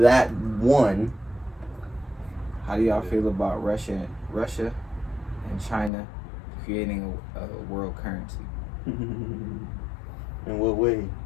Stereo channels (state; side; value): drops out; right; at 5.9 s